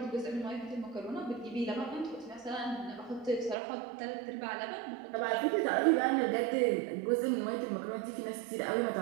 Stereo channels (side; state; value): left; drops out; at 3.6 s